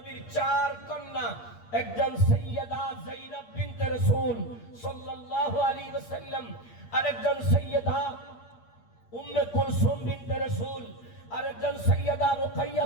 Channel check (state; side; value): late; right; 8.5 ms